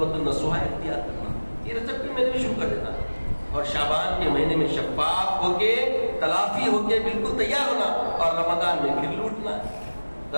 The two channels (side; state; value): both; inverted; correlation -1.00